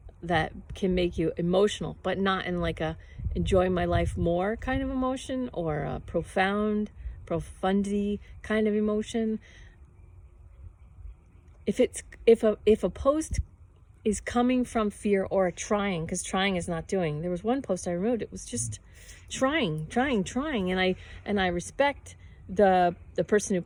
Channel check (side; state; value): both; identical; correlation 1.00